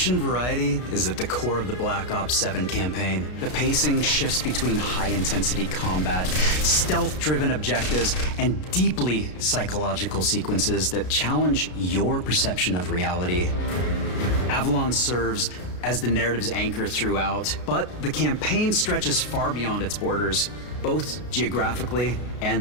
variety is at the core of the Black Ops 7 campaign. The pacing shifts between high-intensity combat, stealth-driven objectives, and deeply psychological sequences that challenge your perception of reality. Avalon serves as the narrative's anchor throughout, but the campaign stretches far beyond its borders, both geographically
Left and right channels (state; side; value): late; right; 33 ms